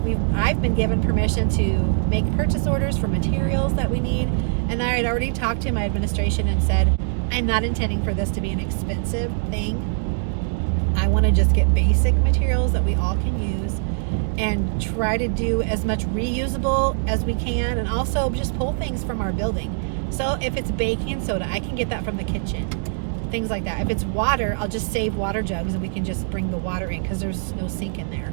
I've been given permission to make purchase orders for materials that we need. And I had already talked to my administration and said, I'm not intending for this to be an expensive thing. I want to just get basic materials that we all can use and try to do as much reusable as we can, and also just pull things from our building. So if it's baking soda, I can get that from the kitchen. Things like that. If it's water, I'll just save water jugs and we can just bring the water in, because there's no sink in there.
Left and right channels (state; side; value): silent; left; digital silence